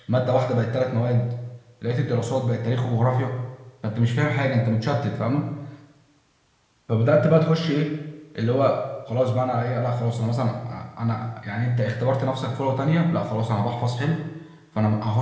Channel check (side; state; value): both; identical; correlation 1.00